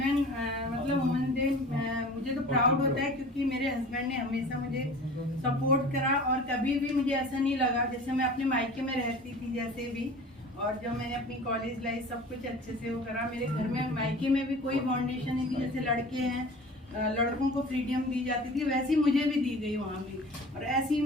मतलब वुमेन्स डे मुझे तो प्राउड होता है, क्योंकि मेरे हस्बैंड ने हमेशा मुझे सपोर्ट करा और कभी भी मुझे ऐसा नहीं लगा, जैसे मैं अपने मायके में रहती थी जैसे भी, और जब मैंने अपनी कॉलेज लाइफ सब कुछ अच्छे से वो करा। मेरे घर में मायके में भी कोई फाउंडेशन नहीं थी, जैसे लड़के हैं लड़कों को फ्रीडम दी जाती थी वैसी मुझे भी दी गई वहाँ भी। और ऐसे ही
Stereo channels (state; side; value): normal; both; correlation 0.41